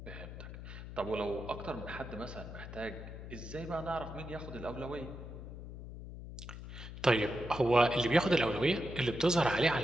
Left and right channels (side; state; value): left; noise; hum, 11 dB below the sound